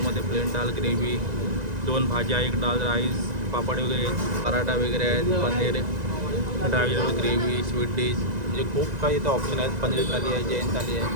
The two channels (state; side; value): late; left; 1.9 ms